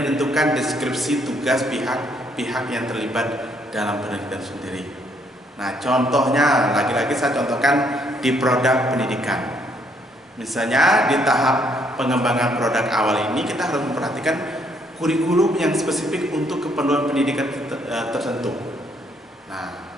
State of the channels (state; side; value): normal; both; correlation 0.69